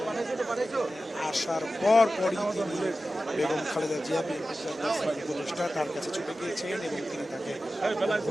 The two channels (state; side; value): normal; both; correlation 0.94